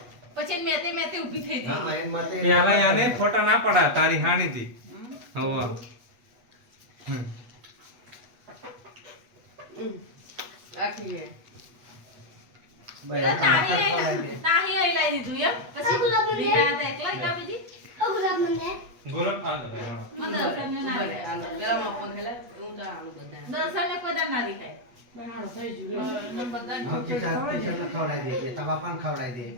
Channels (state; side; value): late; left; 8.2 ms